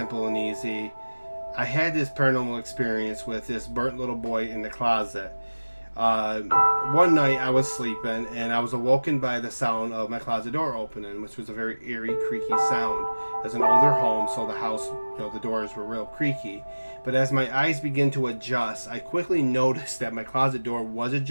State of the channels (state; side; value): inverted; both; correlation -1.00